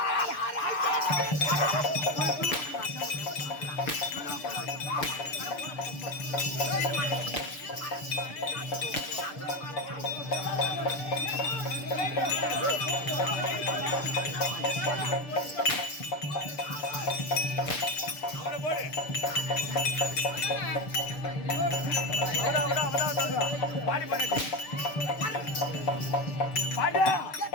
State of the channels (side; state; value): right; late; 6.8 ms